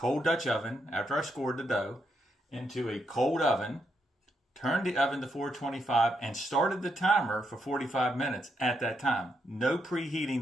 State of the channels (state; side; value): normal; both; correlation 0.79